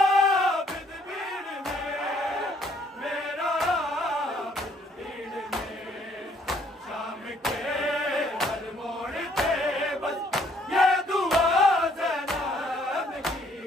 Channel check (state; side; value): normal; both; correlation 0.64